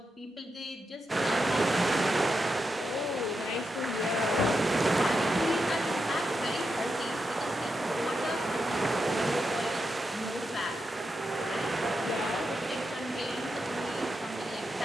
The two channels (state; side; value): normal; both; correlation 0.86